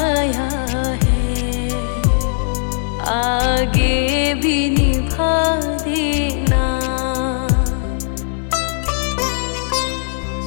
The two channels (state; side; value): silent; right; digital silence